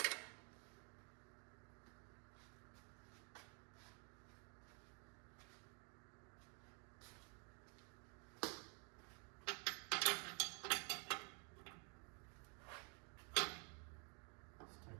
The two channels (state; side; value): quieter; left; 37.7 dB